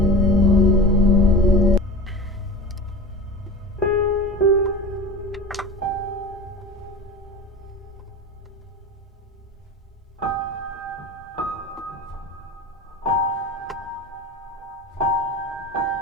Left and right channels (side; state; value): both; normal; correlation 0.32